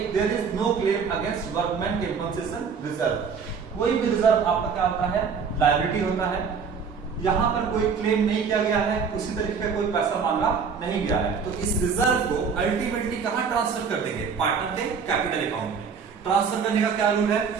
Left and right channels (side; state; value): left; quieter; 6.0 dB